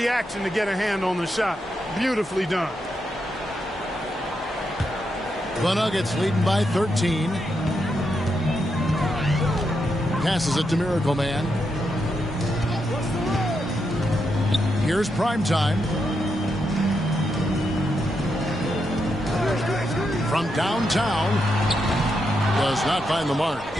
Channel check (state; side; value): normal; both; correlation 0.83